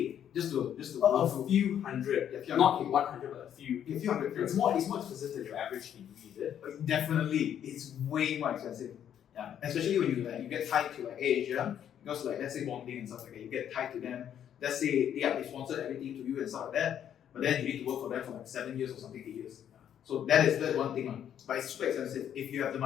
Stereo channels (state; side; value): quieter; right; 9.7 dB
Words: Just to A few hundred. Yeah, few Not hundred K. 100, but a few. A few hundred K. It's more expensive than your average degree, is it? Definitely, it's way more expensive. Yeah, especially when you get tied to Asia, because let's say bonding and stuff like that, you get tied to them. Let's say they sponsor everything to you and stuff like that, but then you need to work for them for like 7 years or something, 8 years. So that's one thing, but it's super expensive. If you have the